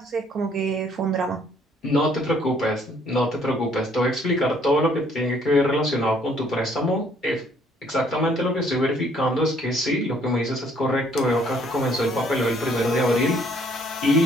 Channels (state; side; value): normal; both; correlation 0.63